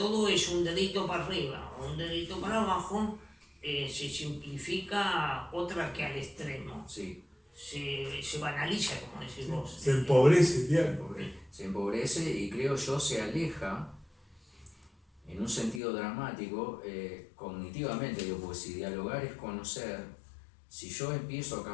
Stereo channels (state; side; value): drops out; right; at 15.8 s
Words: es un dedito para arriba o un dedito para abajo, se simplifica otra que al extremo. Sí, Se banaliza, como decís vos. se empobrece el diálogo. se empobrece y creo yo se aleja en un sentido dramático, cognitivamente, digo, porque si dialogar es conocer, si yo empiezo a